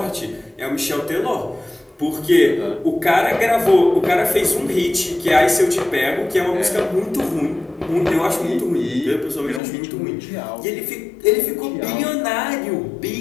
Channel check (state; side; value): drops out; right; at 9.6 s